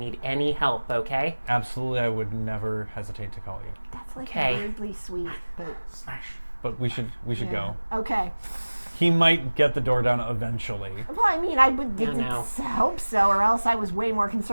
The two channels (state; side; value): inverted; both; correlation -1.00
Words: any help, okay?" Absolutely, I would never hesitate to call you. That's like Okay. weirdly sweet, but Smash. But we should yeah. go. Okay. He might get the door down eventually. Well, I mean, I would Yeah, no. hope so, or else I was way more